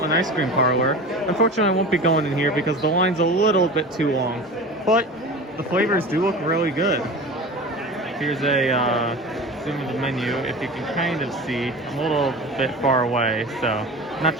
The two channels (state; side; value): normal; both; correlation 0.33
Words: Ice Cream Parlor. Unfortunately, I won't be going in here because the line's a little bit too long, but the flavors do look really good. Here's a zoom of the menu. If you can kind of see, I'm a little bit far away, so not